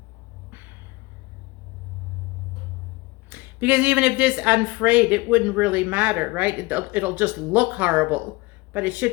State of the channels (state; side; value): quieter; right; 22.6 dB